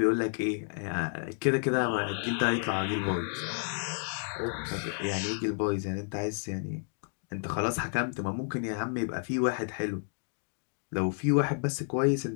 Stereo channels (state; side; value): silent; right; 57 dB below the other